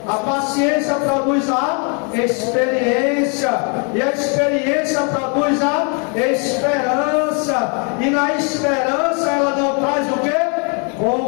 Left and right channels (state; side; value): quieter; right; 36.8 dB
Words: A paciência produz a experiência, e a experiência produz a esperança, e na esperança ela não traz o quê?